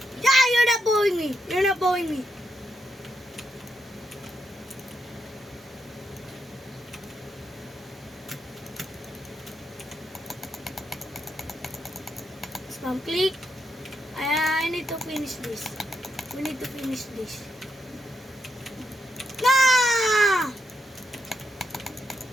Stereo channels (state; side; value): normal; both; correlation 0.81